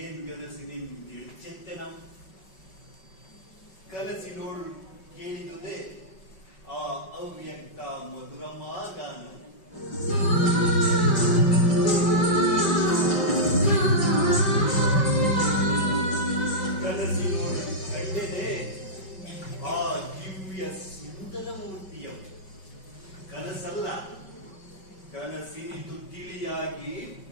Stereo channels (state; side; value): late; right; 5.3 ms